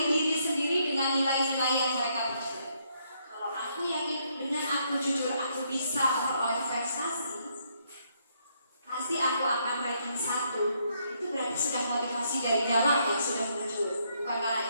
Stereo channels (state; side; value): inverted; both; correlation -0.73